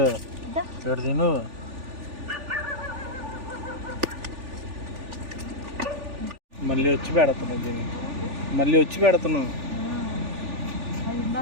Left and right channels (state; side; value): late; left; 3.4 ms